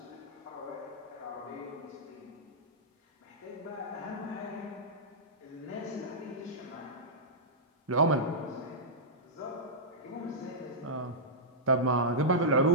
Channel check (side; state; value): both; normal; correlation -0.13